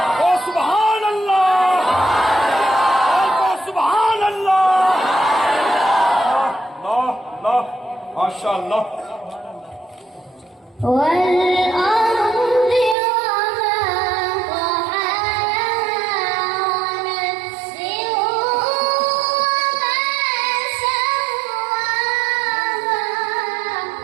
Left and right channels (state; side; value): drops out; left; at 13.0 s